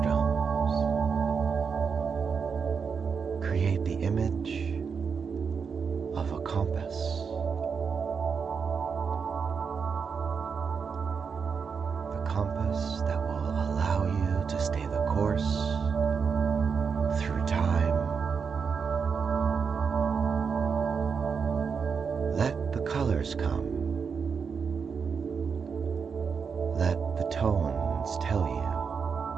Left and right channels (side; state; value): left; quieter; 6.0 dB